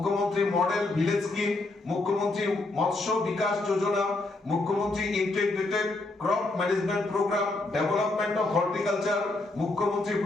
মডেল ভিলেজ স্কিম, মুখ্যমন্ত্রী মৎস্য বিকাশ যোজনা, মুখ্যমন্ত্রী integrated crop management programme, development of horticulture, মুখ্যমন্ত্রী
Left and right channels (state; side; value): quieter; right; 3.0 dB